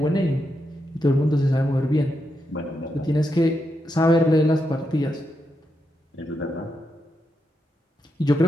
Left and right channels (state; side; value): normal; both; correlation 0.84